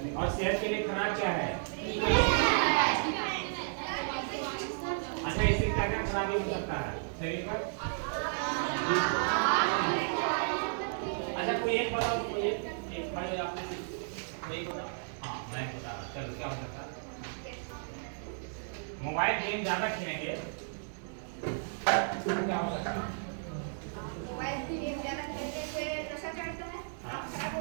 और सेहत के लिए खराब क्या है? अच्छा, इससे क्या क्या खराबी हो सकता है शरीर पर? अच्छा कोई एक बताओ, कोई एक खड़े आपने कोई बताओ। हाँ मैं बता रहा, चलो क्या हो सकता है? मोबाइल गेम ज्यादा खेलेंगे क्या हो सकता है? मोबाइल गेम ज्यादा खेलने से नशा चढ़ता है, खराब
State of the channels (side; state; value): left; silent; digital silence